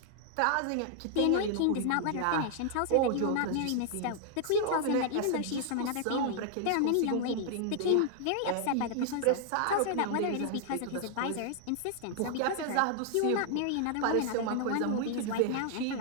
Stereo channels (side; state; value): both; different; correlation 0.00